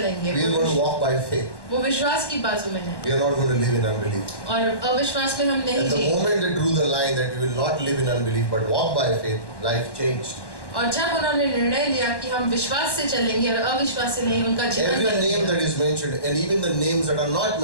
We are going to walk by faith. वो विश्वास की बाजू में है We are not going to live in unbelief. और अविश्वास में हम नहीं And the जिए। moment they drew the line that we will not live in unbelief but walk by faith, life changed. और जब उन्होंने निर्णय लिया कि हम विश्वास से चलेंगे और अविश्वास से नहीं, उनका जीवन Every बदल name गया। that is mentioned, and even the names that are not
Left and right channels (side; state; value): right; late; 1.1 ms